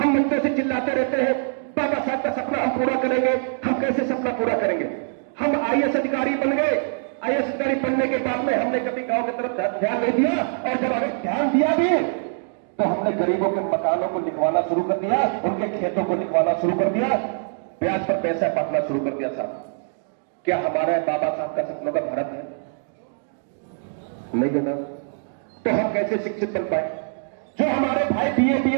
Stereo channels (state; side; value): silent; left; digital silence